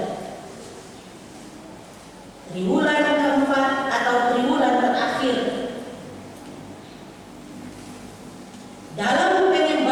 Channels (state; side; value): identical; both; correlation 1.00